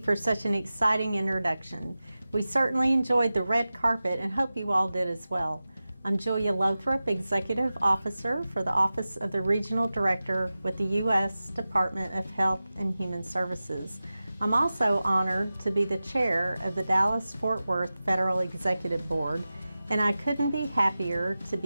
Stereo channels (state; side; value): inverted; both; correlation -0.95